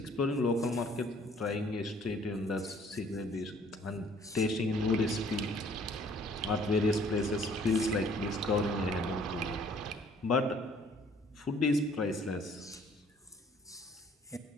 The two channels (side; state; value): both; normal; correlation 0.58